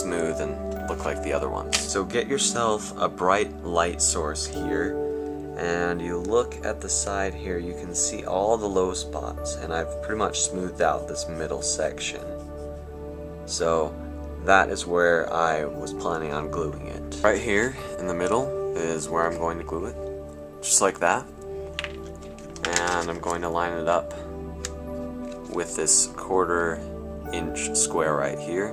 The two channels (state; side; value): identical; both; correlation 1.00